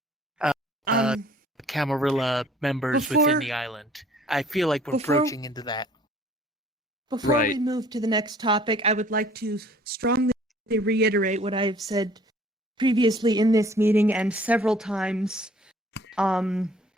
Camarilla members within the island. I feel like we're approaching into that. Before we move to the next topic, I would like to strongly reiterate what I have said previously in this meeting and several times in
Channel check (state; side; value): normal; both; correlation 0.55